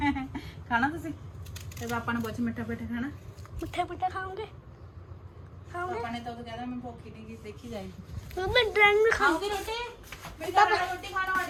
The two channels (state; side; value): identical; both; correlation 1.00